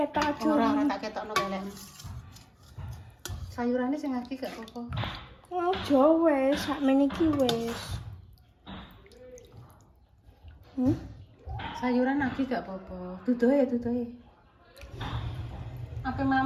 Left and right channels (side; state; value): both; identical; correlation 1.00